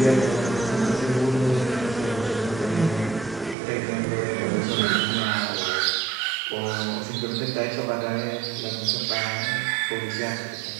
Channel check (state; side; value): drops out; left; at 3.6 s